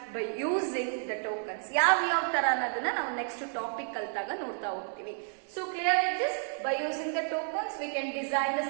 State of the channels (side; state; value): left; silent; 56 dB below the other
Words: by using the tokens. ಯಾವ ತರ ಅನ್ನೋದನ್ನ ನಾವು ನೆಕ್ಸ್ಟ್ ಟಾಪಿಕ್ ಕಲ್ತಾಗ ನೋಡ್ತಾ ಹೋಗ್ತೀವಿ. So clear with this, by using the tokens we can design the